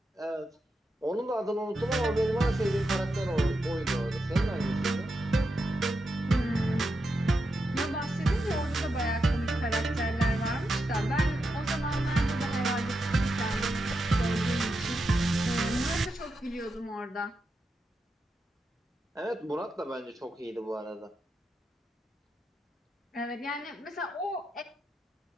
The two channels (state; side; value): normal; both; correlation 0.86